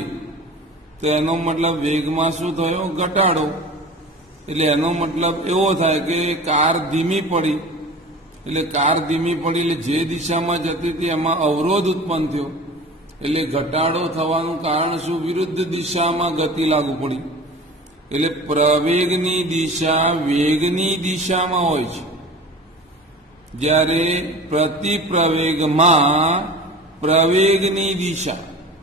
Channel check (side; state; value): both; normal; correlation 0.38